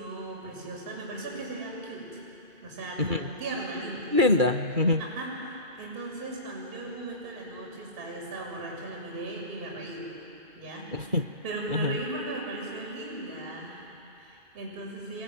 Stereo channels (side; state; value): left; late; 2.3 ms